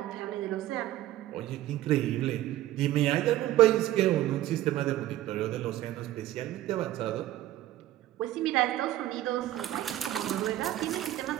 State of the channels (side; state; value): left; quieter; 14.2 dB